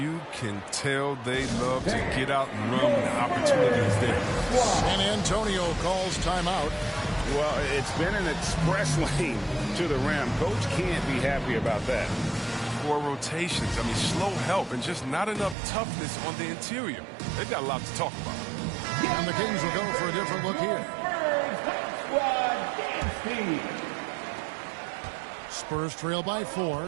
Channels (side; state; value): left; drops out; at 15.6 s